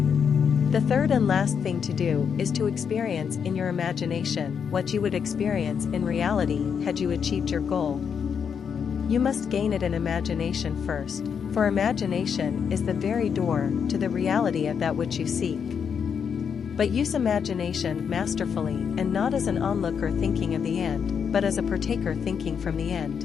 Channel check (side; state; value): right; quieter; 7.0 dB